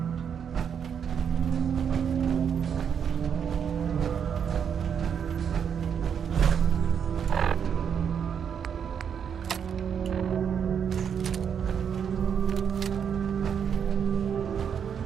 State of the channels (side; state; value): left; quieter; 7.6 dB